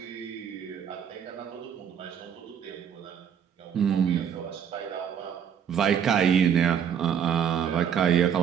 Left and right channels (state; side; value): quieter; left; 8.3 dB